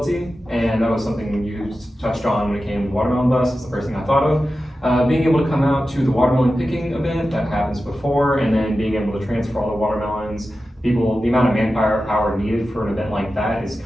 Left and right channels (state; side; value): normal; both; correlation 0.93